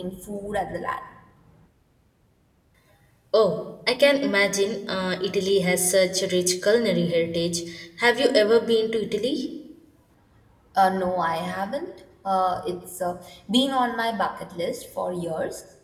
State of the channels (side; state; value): both; identical; correlation 1.00